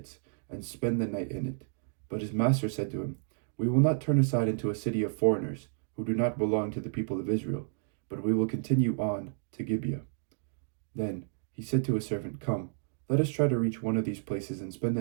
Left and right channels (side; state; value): left; silent; digital silence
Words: and spend the night in it." But his master said to him, "We will not turn aside into a city of foreigners, who do not belong to the people of Israel, but we will continue on to Gibeah." Then he said to his servant, "Come, let us try to reach one of these places and spend